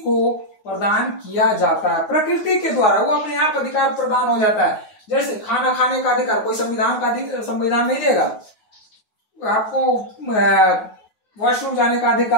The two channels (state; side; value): late; right; 9.6 ms